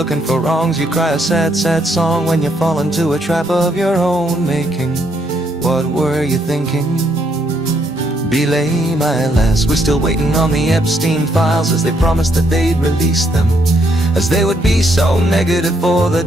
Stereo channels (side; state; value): both; normal; correlation 0.73